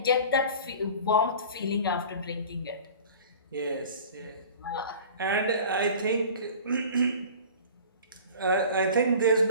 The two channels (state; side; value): inverted; both; correlation -0.41